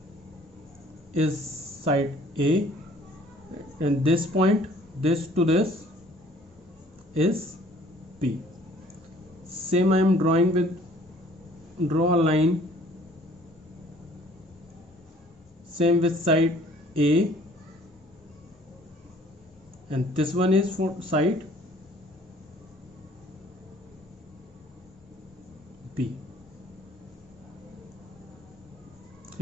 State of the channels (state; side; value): normal; both; correlation 0.55